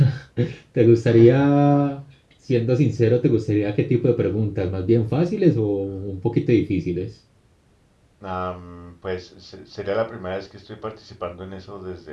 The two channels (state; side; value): identical; both; correlation 1.00